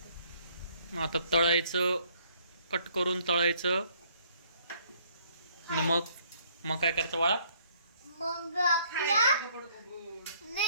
आता तळायचं, कट करून तळायचं आणि मग काय करायचं बाळा? मग आपल्या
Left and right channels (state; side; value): inverted; both; correlation -0.64